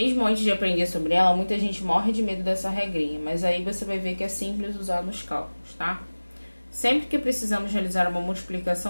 antes de aprender sobre ela, muita gente morre de medo dessa regrinha, mas aí você vai ver que é simples usar nos cálculos, tá? Sempre que precisamos realizar uma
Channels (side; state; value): both; inverted; correlation -1.00